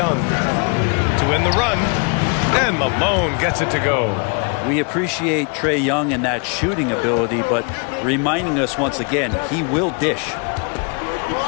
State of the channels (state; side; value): quieter; right; 35.8 dB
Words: to end the run. And Malone gets it to go. We appreciate Trae Young and that shooting ability, but reminding us once again, he will dish.